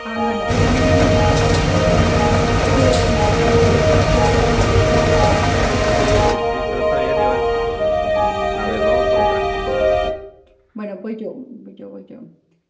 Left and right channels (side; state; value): both; identical; correlation 1.00